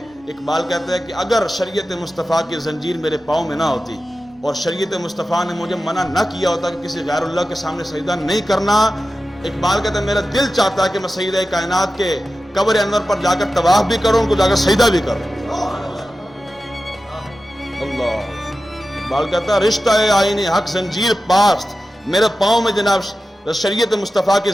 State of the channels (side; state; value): both; normal; correlation 0.93